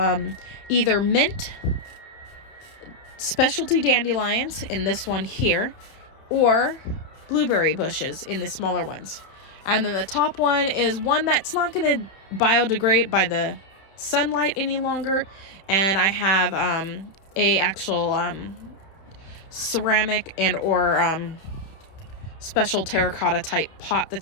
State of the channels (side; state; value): right; late; 31 ms